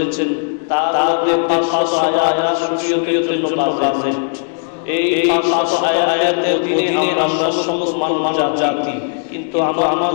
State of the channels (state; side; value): silent; right; digital silence